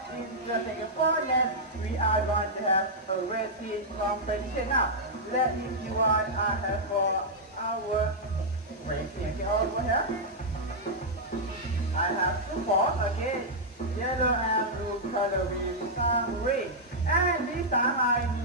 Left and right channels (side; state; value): both; normal; correlation -0.07